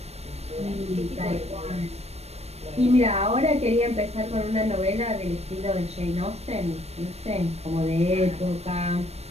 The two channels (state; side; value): late; left; 0.31 ms